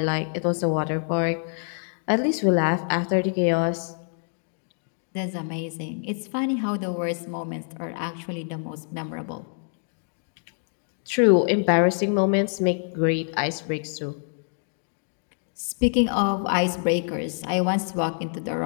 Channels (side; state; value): right; silent; 61 dB below the other